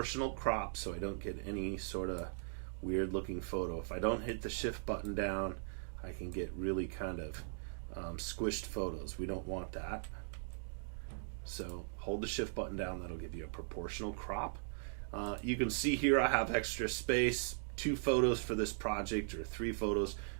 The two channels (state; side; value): silent; left; digital silence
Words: crop so I don't get any sort of weird looking photo. If I don't hit the shift button down, I can get really kind of squished photos. We don't want that. So hold the shift button down, that'll give you a proportional crop. You can see here I have extra space. 2 photos for this project or 3 photos